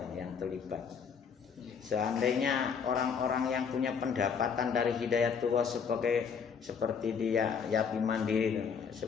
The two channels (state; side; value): quieter; right; 6.5 dB